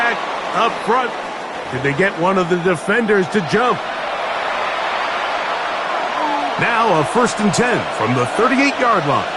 up front. Did they get one of the defenders to jump? Now a 1st and 10 from the 38-yard line.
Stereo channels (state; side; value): identical; both; correlation 1.00